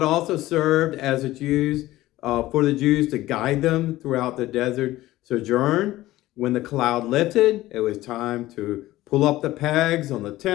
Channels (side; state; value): right; quieter; 16.4 dB